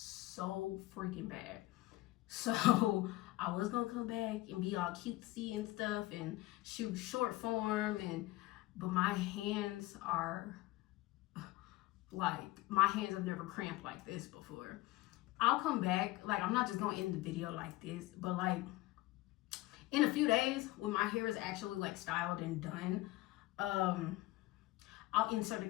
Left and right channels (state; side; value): quieter; right; 18.8 dB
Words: freaking bad. So I was gonna come back and be all cutesy and stuff and shoot short form, but my hands are like, my hands have never cramped like this before. I'll come back, like I'm not just gonna end the video like this, but like in a few days when my hair is actually like styled and done, I'll insert a